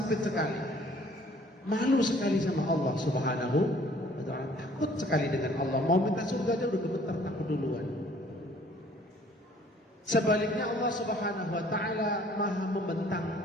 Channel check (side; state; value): both; normal; correlation 0.56